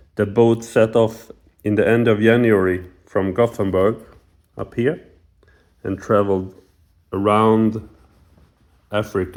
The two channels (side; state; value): both; identical; correlation 1.00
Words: The boat set off in the end of January from Gothenburg up here and traveled around